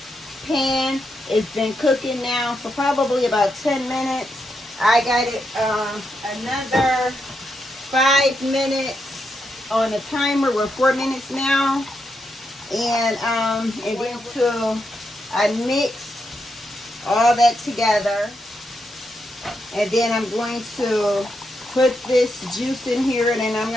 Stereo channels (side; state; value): both; normal; correlation 0.83